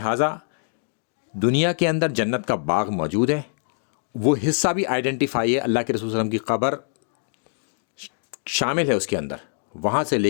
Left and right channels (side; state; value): right; silent; digital silence